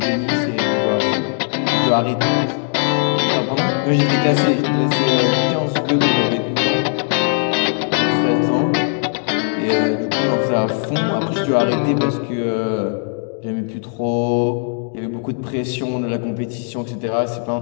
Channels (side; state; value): right; silent; 58 dB below the other